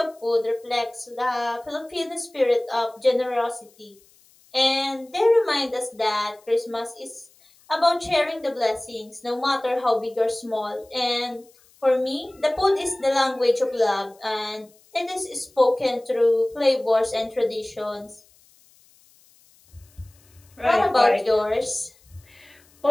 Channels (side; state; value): left; noise; hiss, 30 dB below the sound